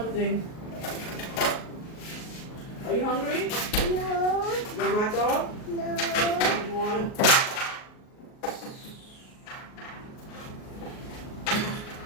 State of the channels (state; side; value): late; right; 38 ms